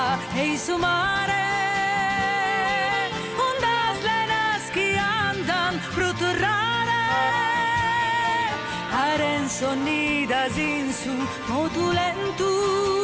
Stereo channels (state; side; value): identical; both; correlation 1.00